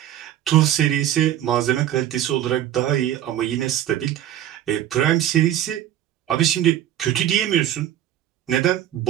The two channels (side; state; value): left; quieter; 11.9 dB